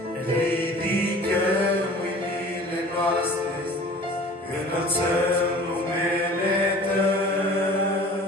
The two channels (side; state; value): both; normal; correlation 0.44